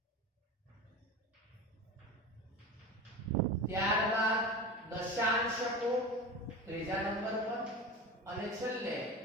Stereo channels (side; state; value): both; normal; correlation 0.29